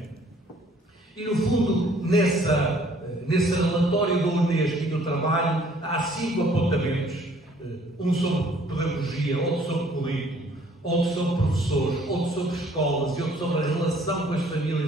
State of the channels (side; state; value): both; normal; correlation 0.59